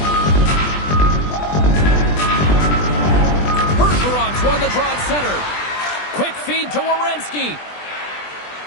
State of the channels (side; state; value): right; late; 20 ms